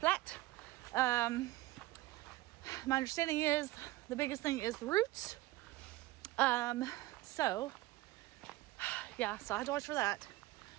My understanding is the biggest thing is the roots. So I have to watch for that.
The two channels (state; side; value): quieter; left; 18.3 dB